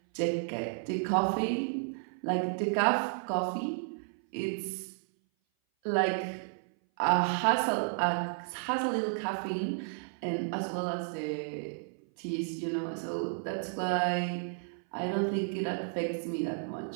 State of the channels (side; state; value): left; silent; 56 dB below the other